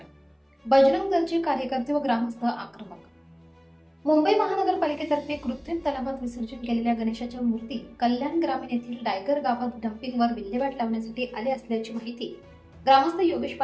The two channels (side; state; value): both; identical; correlation 1.00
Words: बजरंग दलचे कार्यकर्ते व ग्रामस्थ आक्रमक। मुंबई महानगरपालिकेतर्फे कृत्रिम तलावात विसर्जन केलेल्या गणेशाच्या मूर्ती कल्याण ग्रामीण येथील डायगर गावात डम्पिंगवर विल्हेवाट लावण्यासाठी आले असल्याची माहिती ग्रामस्थ योगेश